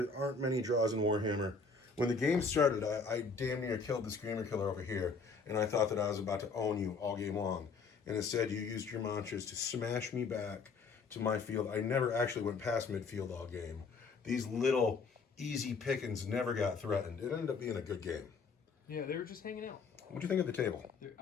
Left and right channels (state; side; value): quieter; right; 4.7 dB